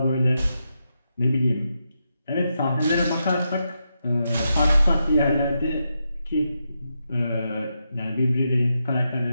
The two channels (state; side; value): inverted; both; correlation -0.85